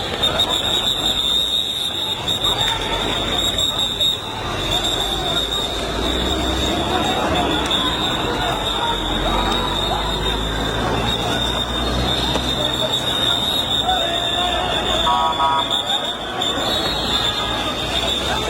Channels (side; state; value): both; identical; correlation 1.00